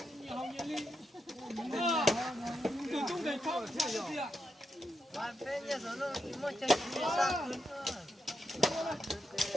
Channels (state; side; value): normal; both; correlation 0.84